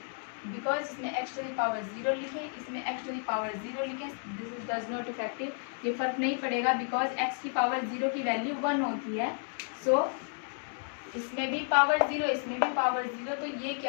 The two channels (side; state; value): right; silent; 56 dB below the other